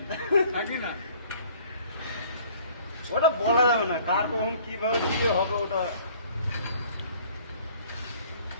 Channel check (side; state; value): both; inverted; correlation -0.54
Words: ওটা বলা যাবে না, কার কখন কিভাবে কি হবে ওটা।